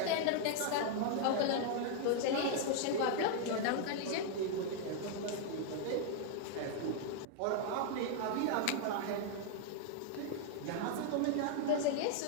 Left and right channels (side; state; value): both; different; correlation 0.00